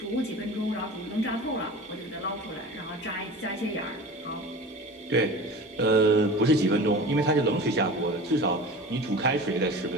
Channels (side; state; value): both; normal; correlation 0.36